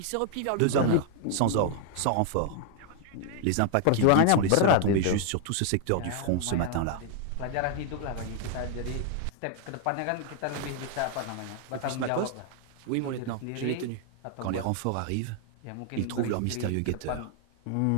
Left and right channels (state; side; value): different; both; correlation 0.00